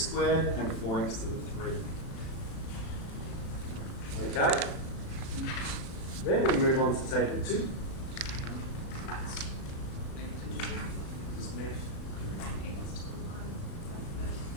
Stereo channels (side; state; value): right; late; 36 ms